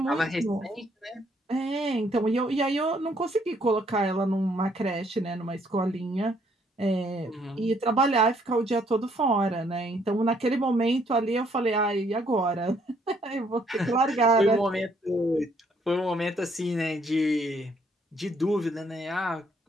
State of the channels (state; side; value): normal; both; correlation 0.67